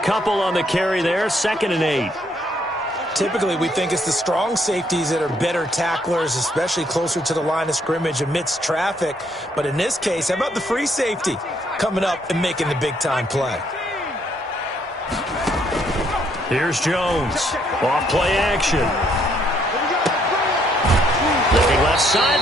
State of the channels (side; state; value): both; normal; correlation 0.70